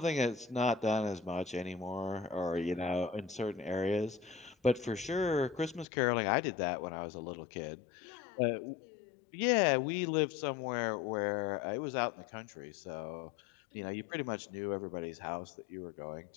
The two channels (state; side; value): drops out; right; at 5.9 s